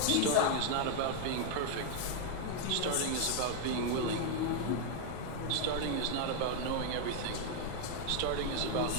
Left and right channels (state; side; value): different; both; correlation 0.00